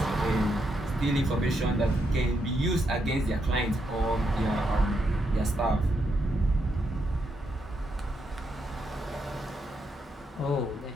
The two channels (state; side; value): normal; both; correlation 0.80